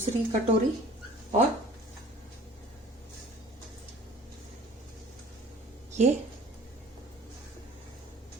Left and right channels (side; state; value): both; normal; correlation 0.48